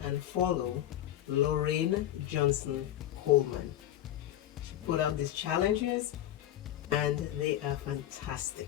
and follow Lorraine Johnson Coleman. She put out these challenges and they are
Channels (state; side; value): quieter; right; 12.5 dB